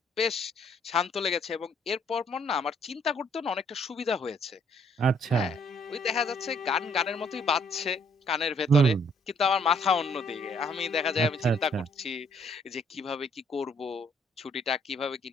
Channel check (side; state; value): both; normal; correlation 0.65